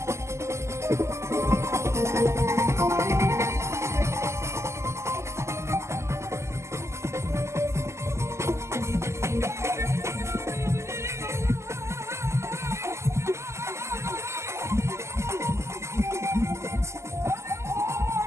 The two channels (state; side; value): late; left; 0.13 ms